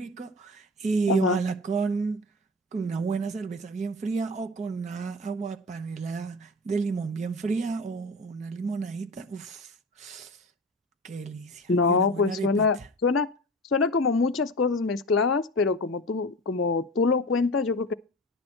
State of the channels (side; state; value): both; normal; correlation 0.32